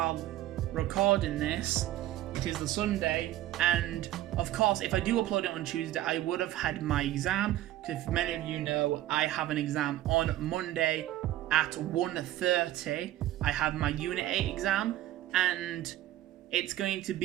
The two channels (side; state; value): left; quieter; 14.1 dB